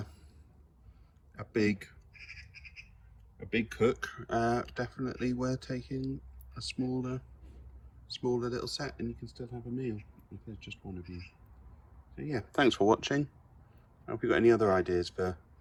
a big cook, definitely worth taking a smaller little set, and you can still have a meal if there's just one of you. So yeah, thanks for watching. If you've got any other ideas for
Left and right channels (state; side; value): identical; both; correlation 1.00